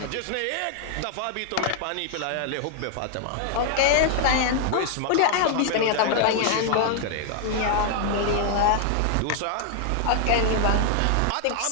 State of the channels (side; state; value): both; different; correlation 0.00